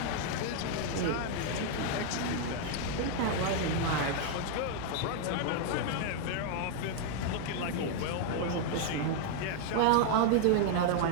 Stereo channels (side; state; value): both; different; correlation 0.00